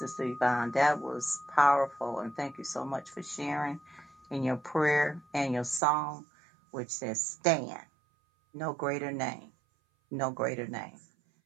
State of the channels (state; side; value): drops out; left; at 5.8 s